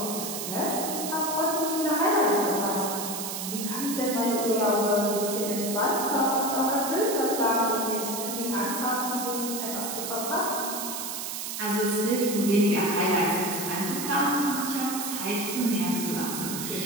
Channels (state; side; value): noise; right; hiss, 5 dB below the sound